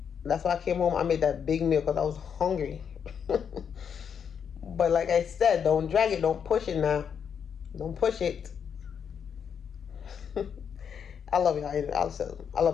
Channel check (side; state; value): right; quieter; 7.4 dB